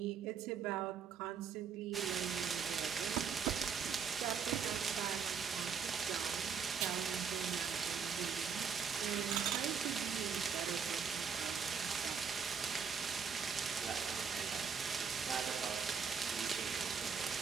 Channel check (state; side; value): quieter; left; 6.4 dB